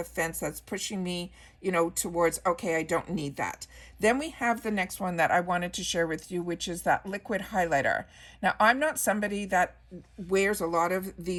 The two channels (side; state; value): both; identical; correlation 1.00